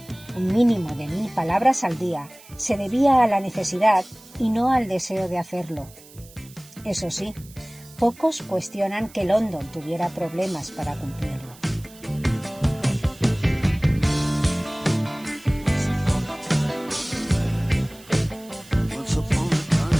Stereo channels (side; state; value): right; noise; hiss, 22 dB below the sound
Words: un mínimo de 1000 palabras al día, se debía a la necesidad y no al deseo de hacerlo. Eso sí, pocos cuestionan que London tuviera problemas para cumplirlo.